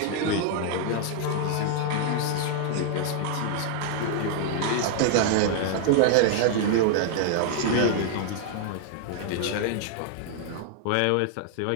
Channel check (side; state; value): both; different; correlation -0.01